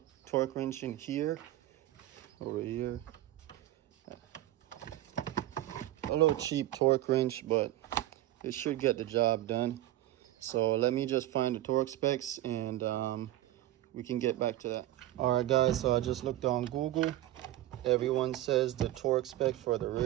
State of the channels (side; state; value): left; quieter; 14.8 dB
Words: wrench in here, over here. A little cheap torque wrench, but it should get the job done. So let me just find the torque specs, and we can get back to that. All right, guys, so I just looked on Google. Everyone says the torque spec for the